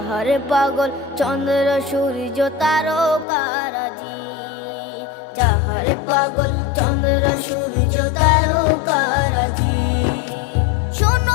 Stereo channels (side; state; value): right; drops out; at 3.2 s